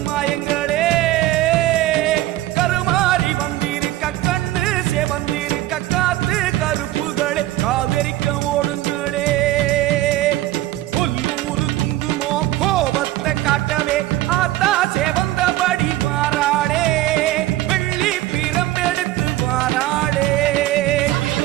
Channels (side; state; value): left; quieter; 15.5 dB